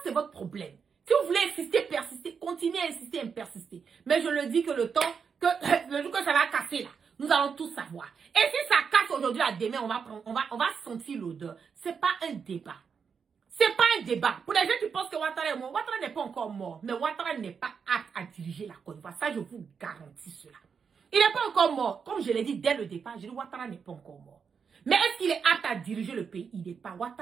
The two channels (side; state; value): left; quieter; 6.3 dB